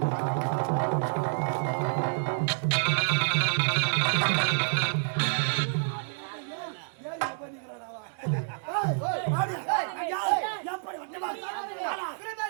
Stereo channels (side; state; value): left; silent; digital silence